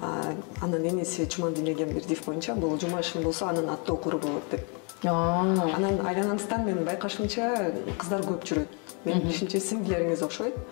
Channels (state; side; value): quieter; right; 36.1 dB